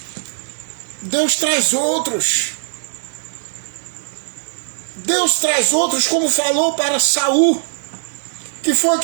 Deus traz outros. Deus traz outros, como falou para Saul. Que foi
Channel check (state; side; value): silent; left; digital silence